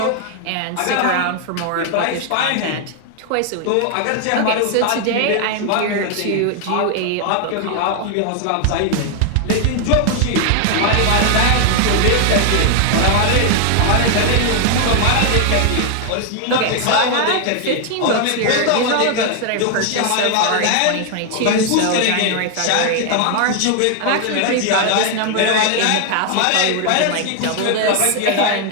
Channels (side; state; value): both; different; correlation 0.00